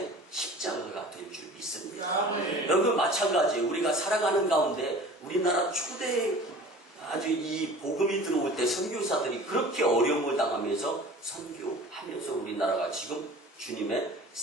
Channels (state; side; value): normal; both; correlation 0.42